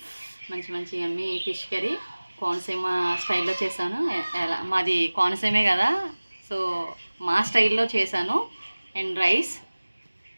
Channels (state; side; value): inverted; both; correlation -1.00